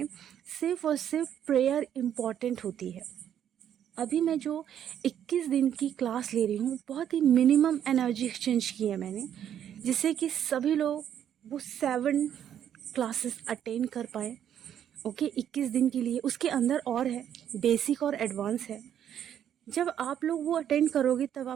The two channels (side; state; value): left; quieter; 9.8 dB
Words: सिर्फ और सिर्फ प्रेयर इम्पॉर्टेंट होती है। अभी मैं जो 21 दिन की क्लास ले रही हूँ, बहुत ही मिनिमम एनर्जी एक्सचेंज की है मैंने, जिससे कि सभी लोग वो 7 क्लासेस अटेंड कर पाए। ओके, 21 दिन के लिए। उसके अंदर और है, बेसिक और एडवांस है। जब आप लोग वो अटेंड करोगे तब